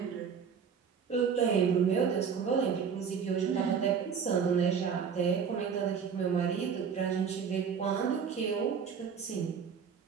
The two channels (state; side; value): quieter; left; 6.7 dB